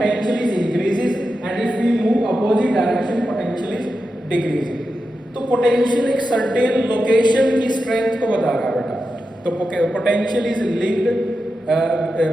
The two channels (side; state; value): both; normal; correlation 0.89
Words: is increases and if we move opposite direction potential is decreases। तो पोटेंशियल एक सर्टेन लोकेशन की स्ट्रेंथ को बता रहा है बेटा। तो potential is linked